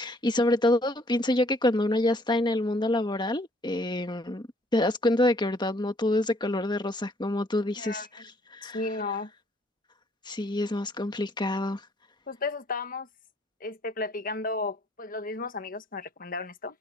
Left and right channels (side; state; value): both; normal; correlation 0.63